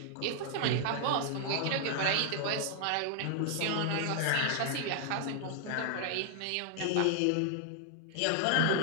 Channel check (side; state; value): both; different; correlation 0.00